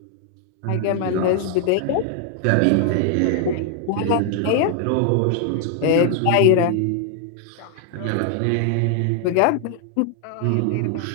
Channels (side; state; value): both; different; correlation 0.00